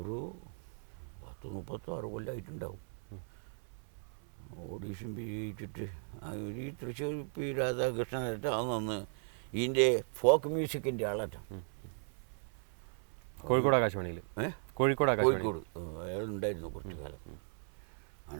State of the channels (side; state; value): left; silent; 53 dB below the other